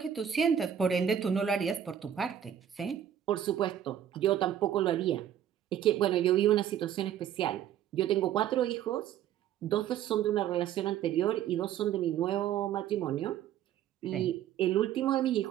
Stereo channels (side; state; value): left; quieter; 10.1 dB